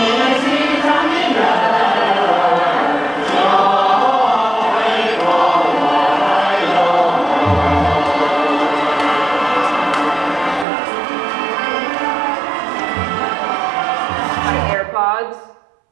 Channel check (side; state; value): left; drops out; at 10.7 s